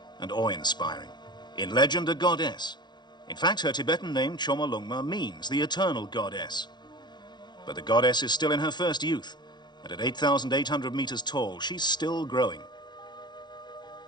and awe-inspiring. In legend, a goddess. In fact, her Tibetan name, Chomolungma, means the eternal goddess. But the goddess is still in her first youth, and at 8,800 meters tall, she's still growing.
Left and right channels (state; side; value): late; right; 0.21 ms